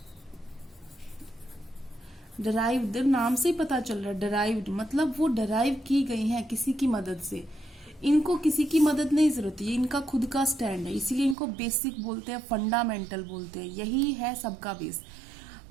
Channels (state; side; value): drops out; left; at 11.4 s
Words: डिराइव्ड नाम से ही पता चल रहा है, डिराइव्ड मतलब वो डिराइव की गई हैं किसी की मदद से। इनको किसी की मदद नहीं जरूरत है, इनका खुद का स्टैंड है, इसीलिए इनको बेसिक बोलते हैं, फंडामेंटल बोलते हैं। यही है सबका बेस।